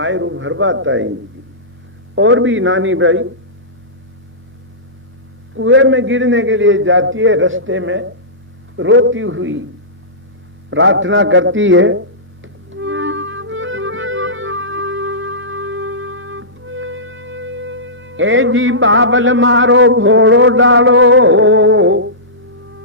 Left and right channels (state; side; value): normal; both; correlation -0.19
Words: भरबाताई जी। और भी नानी भाई कुएं में गिरने के लिए जाती है, रास्ते में रोती हुई प्रार्थना करती है। ए जी बाबल मारो भोड़ो डालो,